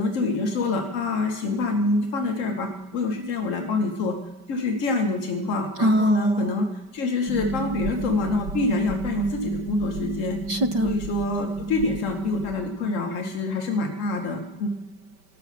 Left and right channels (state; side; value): late; left; 5.2 ms